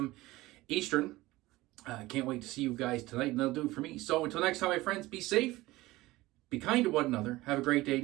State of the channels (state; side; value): quieter; left; 18.8 dB